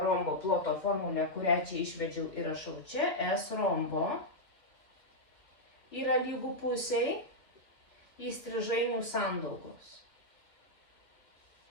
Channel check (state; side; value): late; right; 2.3 ms